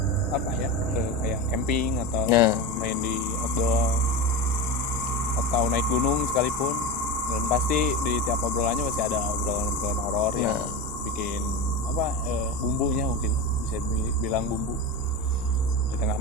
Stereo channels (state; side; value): normal; both; correlation 0.24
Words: kayak camping atau main di outdoor atau naik gunung sekalipun, dan pasti di tiap obrolannya pasti ada obrolan horor yang bikin bumbunya, mungkin bisa bilang bumbu di tengah